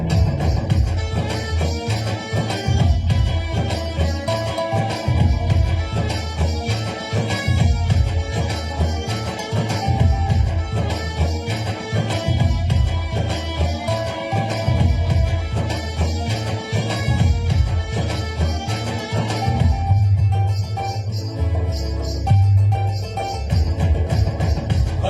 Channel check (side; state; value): both; identical; correlation 1.00